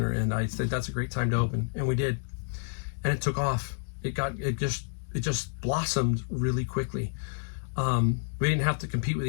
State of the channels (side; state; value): right; silent; digital silence